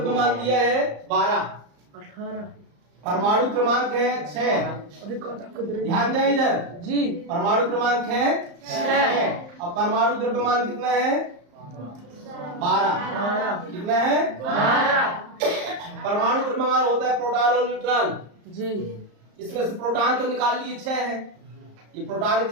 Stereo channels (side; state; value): left; late; 34 ms